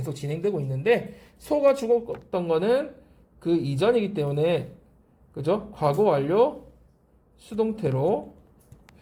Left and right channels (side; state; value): both; identical; correlation 1.00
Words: 진행되고 있는데 소가 죽었던 거는 그 이전이기 때문에 그죠? 과거 완료 수동태로